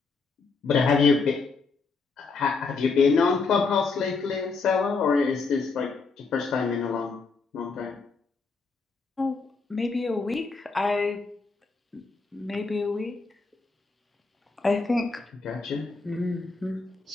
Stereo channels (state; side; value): quieter; right; 4.4 dB